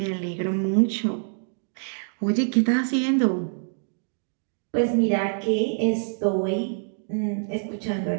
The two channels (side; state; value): left; silent; digital silence